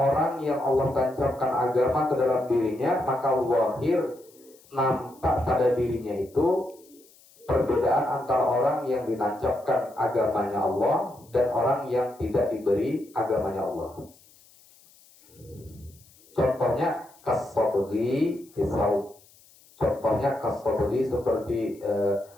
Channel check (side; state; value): left; noise; hiss, 27 dB below the sound